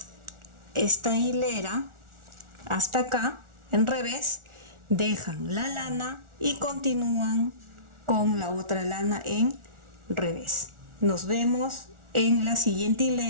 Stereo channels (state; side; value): late; left; 1.4 ms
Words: esta hilera hasta acá en revés, dejan la lana y continúan con la otra lana en revés. Nos vemos en la siguiente